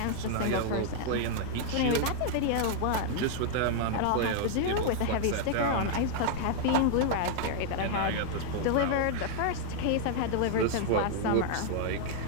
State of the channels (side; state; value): both; different; correlation -0.01